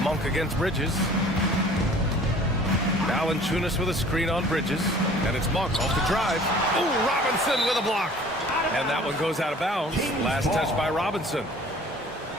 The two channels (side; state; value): both; normal; correlation 0.49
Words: Monk against Bridges. Valanciunas with a screen on Bridges. And it's Monk off the drive. Oh, Robinson with a block. And that one goes out of bounds. Last touch by Robinson.